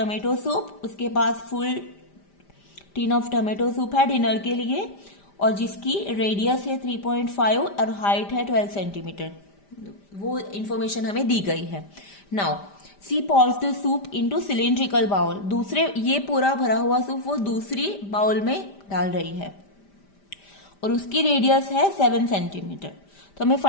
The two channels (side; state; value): right; late; 5.0 ms